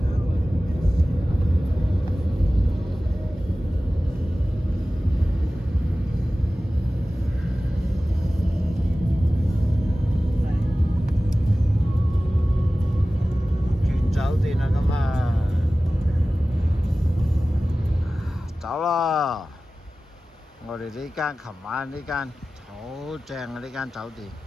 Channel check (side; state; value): both; normal; correlation 0.96